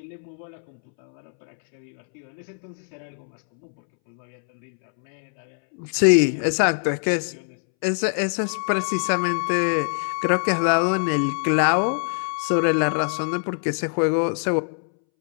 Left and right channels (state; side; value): silent; right; 63 dB below the other